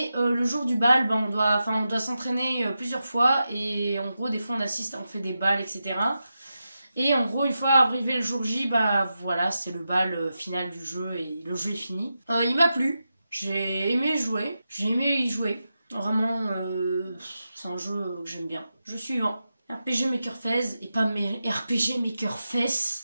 le jour du bal, on doit s'entraîner plusieurs fois et en gros, des fois on fait des balles, etc. Et en gros, une fois arrivé le jour J, voilà, c'est le bal final du jeu et le jeu est fini. Il m'a plu, j'ai aimé y jouer. Vraiment, c'est un jeu que j'aime bien. Jeu suivant. RPG Maker Fez et pas RPG Maker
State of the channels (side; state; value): both; inverted; correlation -0.90